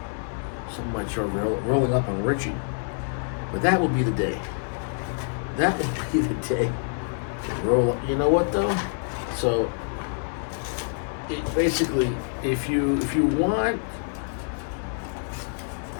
Someone might try rolling up on Richie. But that will be the day. That will be the day. Roll up. You know what though? So basically, if you want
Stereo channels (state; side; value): silent; right; 57 dB below the other